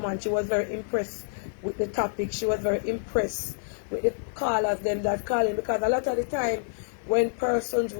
and she was very impressed with the topic. She was very impressed with the callers, them that calling, because a lot of the time when persons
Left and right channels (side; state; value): right; silent; digital silence